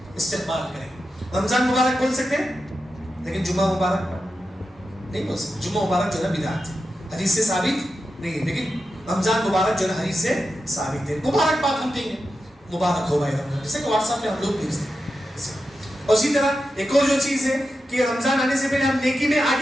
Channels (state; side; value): normal; both; correlation 0.90